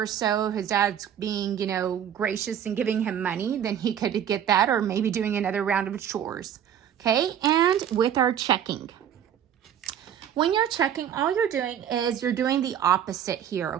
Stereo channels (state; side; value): quieter; left; 9.5 dB